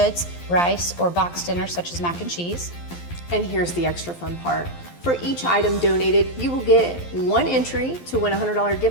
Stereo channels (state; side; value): late; right; 12 ms